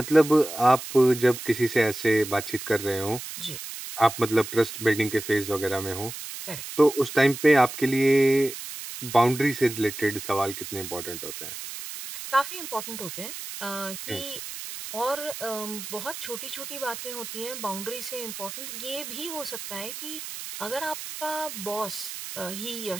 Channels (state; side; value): noise; right; hiss, 9 dB below the sound